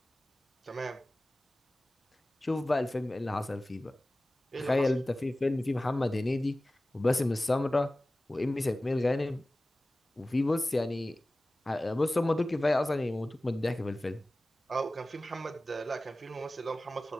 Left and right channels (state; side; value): normal; both; correlation 0.97